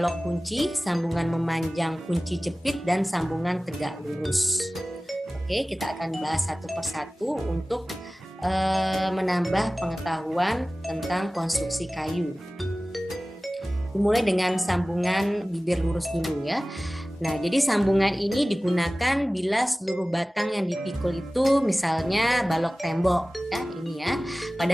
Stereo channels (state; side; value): normal; both; correlation 0.98